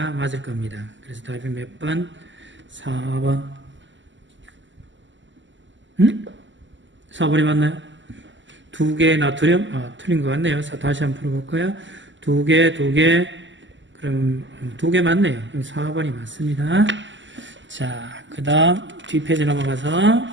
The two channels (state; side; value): late; left; 0.54 ms